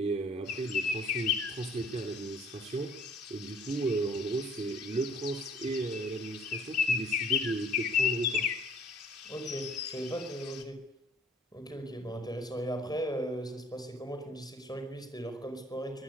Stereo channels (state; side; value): normal; both; correlation 0.56